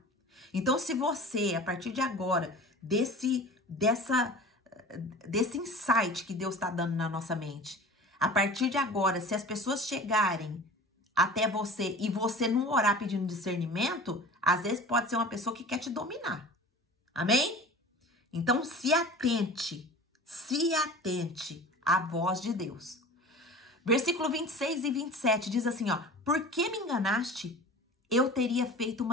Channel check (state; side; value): normal; both; correlation 0.39